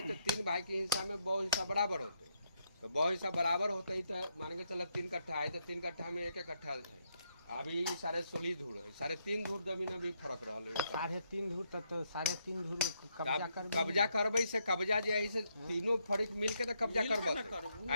तो 3 भाई के हिस्सा में 2 हिस्सा बराबर होते तो 2 हिस्सा बराबर होते ही तो मान के चल 3 कट्ठा है तो 3 कट्ठा में 1 कट्ठा है अभी 16.5 धूर है 3.5 धूर जमीन में भी फर्क रहल है 3.5 धूर तक तो 3.5 धूर कब्जा कर कब्जा करबै से कब्जा जे है से तीनों फरीक मिल के तो कब्जा मिल के करबत ना करबू।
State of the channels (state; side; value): inverted; both; correlation -0.77